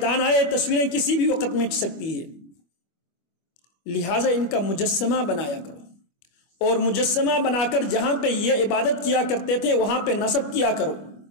آئے، تصویریں کسی بھی وقت مٹ سکتی ہے، لہٰذا ان کا مجسمہ بنایا کرو، اور مجسمہ بنا کر جہاں پہ یہ عبادت کیا کرتے تھے وہاں پہ نصب کیا کرو۔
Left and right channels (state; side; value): late; right; 25 ms